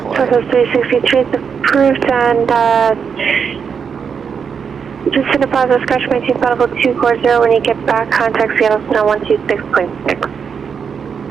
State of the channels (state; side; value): quieter; left; 6.6 dB